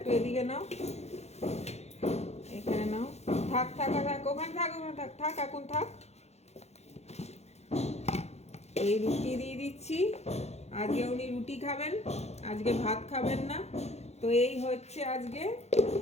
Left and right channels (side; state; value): right; late; 0.31 ms